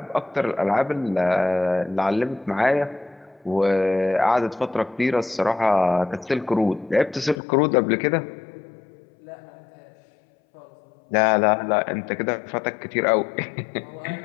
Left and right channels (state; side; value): drops out; right; at 7.4 s